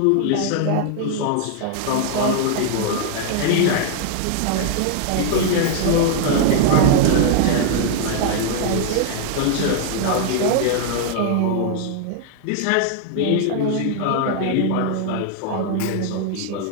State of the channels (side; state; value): both; different; correlation 0.00